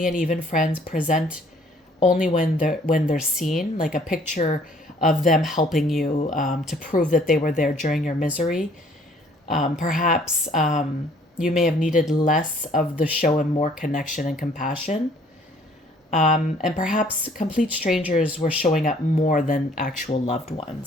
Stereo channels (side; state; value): both; normal; correlation 0.59